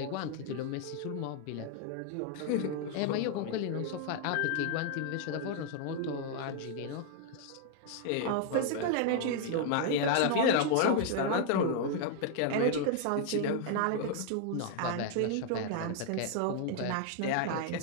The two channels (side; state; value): both; different; correlation 0.00